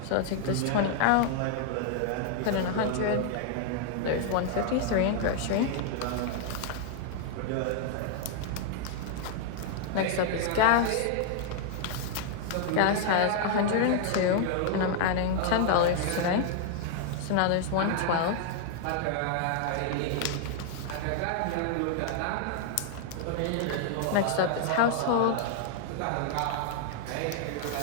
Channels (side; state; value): both; different; correlation 0.00